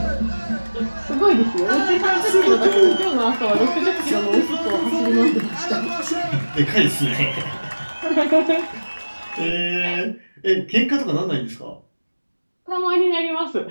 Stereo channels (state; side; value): inverted; both; correlation -1.00